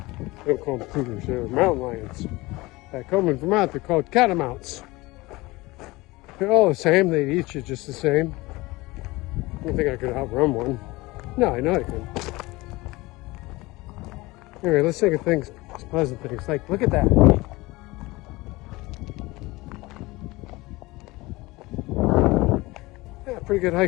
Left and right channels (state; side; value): quieter; right; 21.3 dB